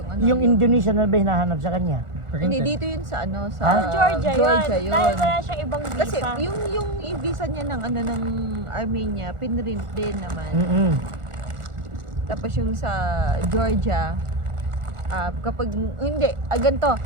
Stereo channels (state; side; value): late; left; 1.4 ms